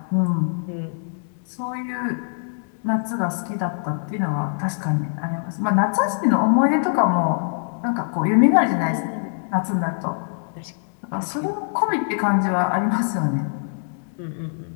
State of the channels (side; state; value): right; silent; 63 dB below the other